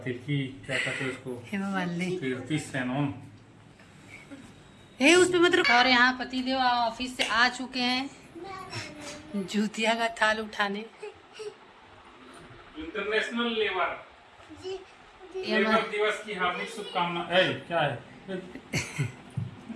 कहते हैं उसको, हेमा मालिनी, कीर्ति सेनन। उस पे मत। और यहाँ पतिदेव ऑफिस से आ चुके हैं जूतिया का थाल उठाने। इंटरनेशनल लेबर दिवस की हार्दिक शुभकामनाएं। क्या है?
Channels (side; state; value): both; identical; correlation 1.00